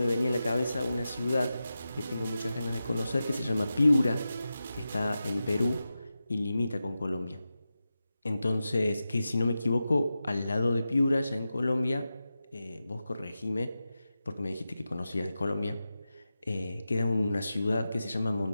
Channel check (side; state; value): both; inverted; correlation -0.92